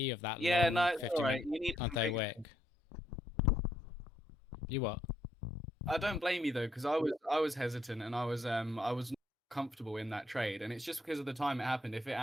of that yeah, long no, it's 50 all right. minute You need Sunday wick. You what? I don't blame you though, because I was hesitant and I was not comfortable in that trade, and it's just because of the time it happened. If it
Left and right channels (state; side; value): normal; both; correlation 0.74